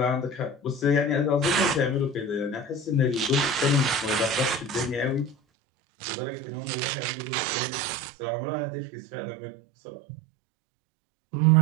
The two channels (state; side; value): drops out; left; at 5.4 s